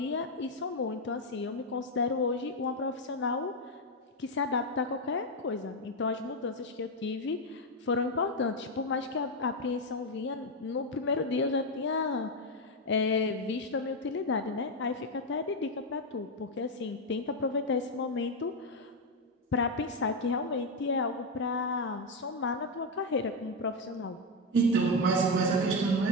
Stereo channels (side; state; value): both; normal; correlation 0.06